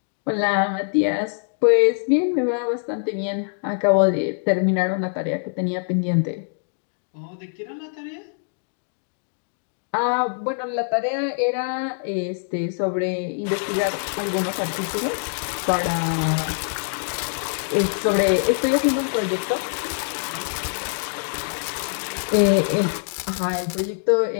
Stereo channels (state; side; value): silent; right; digital silence